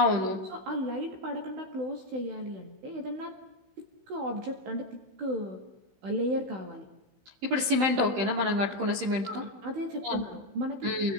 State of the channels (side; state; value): left; late; 15 ms